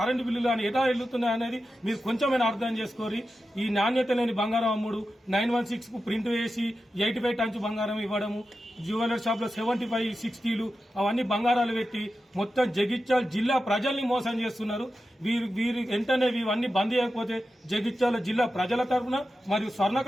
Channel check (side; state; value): both; normal; correlation 0.91